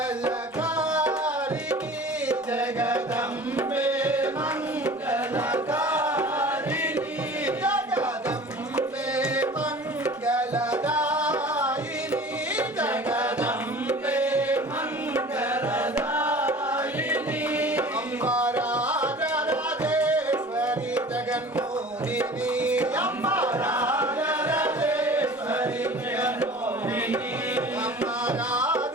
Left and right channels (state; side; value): normal; both; correlation 0.42